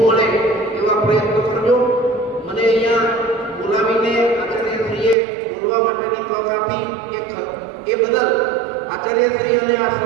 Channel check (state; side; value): drops out; left; at 5.2 s